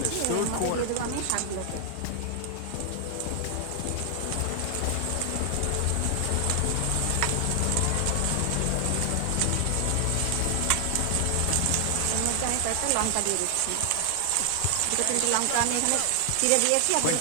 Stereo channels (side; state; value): both; different; correlation 0.00